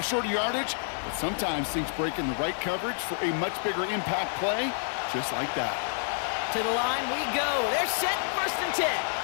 shorter yardage, but sometimes things break in the right coverage for a much bigger impact play, just like that. To the line we go. They're set, 1st and 10.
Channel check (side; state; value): right; silent; 59 dB below the other